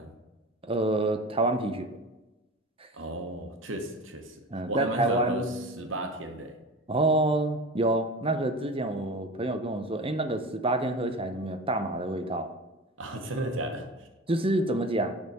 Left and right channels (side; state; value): both; normal; correlation 0.32